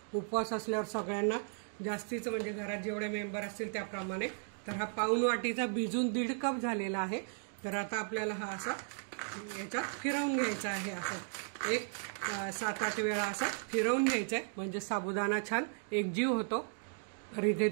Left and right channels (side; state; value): left; silent; 54 dB below the other